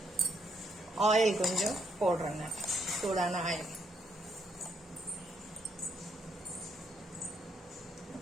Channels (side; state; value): both; normal; correlation 0.74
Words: ஆயில் கொஞ்சம் போடுறேங்க, சூடான ஆயில்.